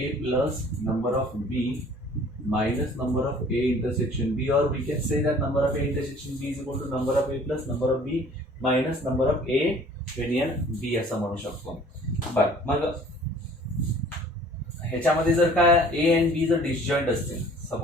plus number of B minus number of A intersection B, or we can say that number of A intersection B is equal to number of A plus number of B minus number of A union B असं म्हणू शकतो. बर मग ह्याच्यामध्ये जर काय A and B जर disjoint असतील,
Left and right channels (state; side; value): normal; both; correlation 0.52